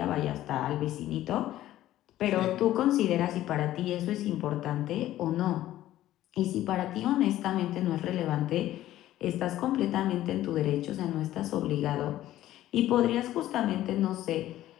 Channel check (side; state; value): right; quieter; 14.0 dB